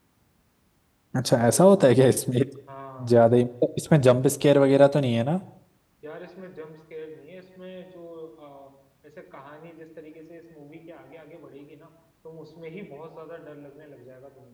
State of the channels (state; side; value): identical; both; correlation 1.00